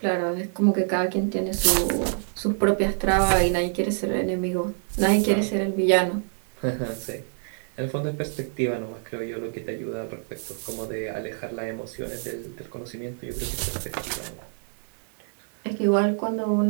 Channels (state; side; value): silent; left; 61 dB below the other